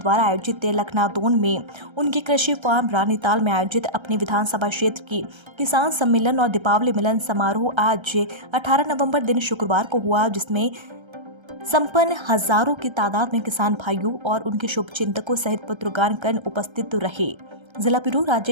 आयोजित लखनादौन में उनके कृषि फार्म रानीताल में आयोजित अपने विधानसभा क्षेत्र की किसान सम्मेलन और दीपावली मिलन समारोह आज 18 नवंबर दिन शुक्रवार को हुआ, जिसमें संपन्न हजारों की तादाद में किसान भाइयों और उनके शुभचिंतकों सहित पत्रकारगण उपस्थित रहे। जिला ब्यूरो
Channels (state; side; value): late; left; 1.3 ms